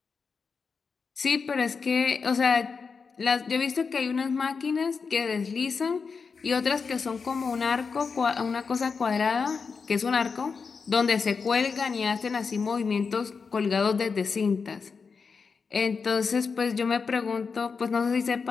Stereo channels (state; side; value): quieter; right; 5.2 dB